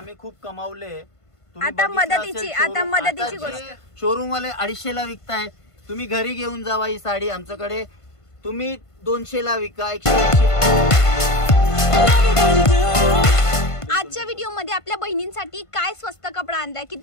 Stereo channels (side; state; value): right; late; 1.5 ms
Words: खूप कमावले. आता मदतीची गोष्ट, शोरूम वाले 250 ला विकताय, तुम्ही घरी घेऊन जावा ही साडी आमच्याकडे, तुम्ही 200 ला विका, 180. आजच्या व्हिडिओ मध्ये आपल्या बहिणींसाठी काय स्वस्त कपडा आणलाय,